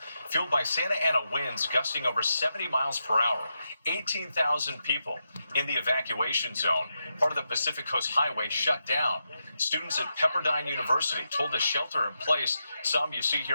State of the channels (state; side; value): inverted; both; correlation -0.86